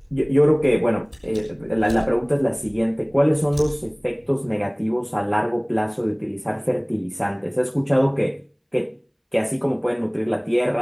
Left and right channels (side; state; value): both; identical; correlation 1.00